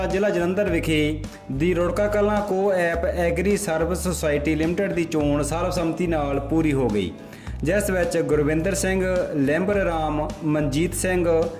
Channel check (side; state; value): both; identical; correlation 1.00